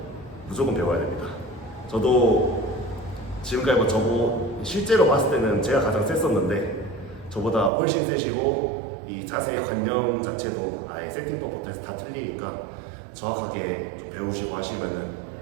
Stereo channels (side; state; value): left; drops out; at 7.7 s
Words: 무조건 배워야 됩니다. 저도 지금까지 저보 실제로 봤을 때는 제가 가장 셌었는데 저보다 훨씬 세시고 이 자세의 관념 자체도 아예 세팅법부터 해서 다 틀리니까 정확하게 좀 배우시고 하시면은